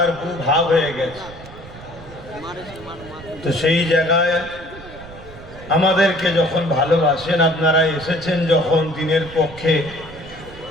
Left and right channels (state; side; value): noise; right; rumble, 17 dB below the sound